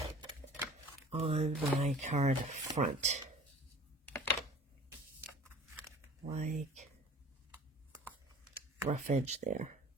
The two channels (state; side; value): normal; both; correlation 0.45